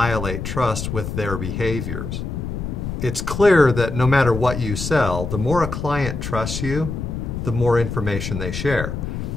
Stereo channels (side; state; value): left; noise; rumble, 5 dB below the sound